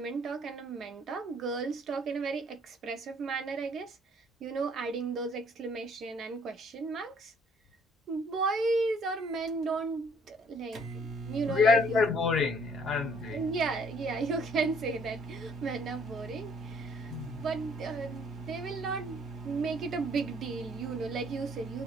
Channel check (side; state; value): both; normal; correlation 0.61